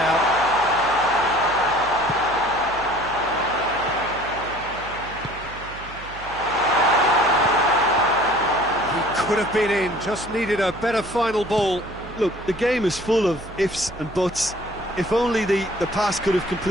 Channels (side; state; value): right; noise; hum, 16 dB below the sound